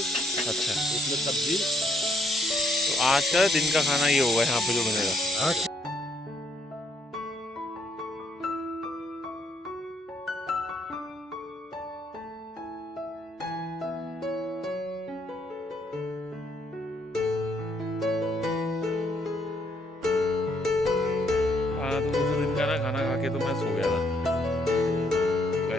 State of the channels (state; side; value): normal; both; correlation 0.71